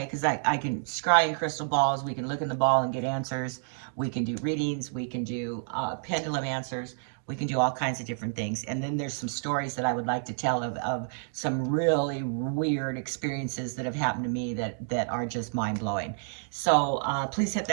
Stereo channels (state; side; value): silent; left; digital silence